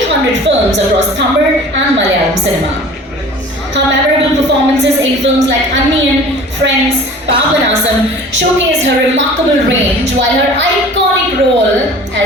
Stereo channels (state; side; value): normal; both; correlation 0.44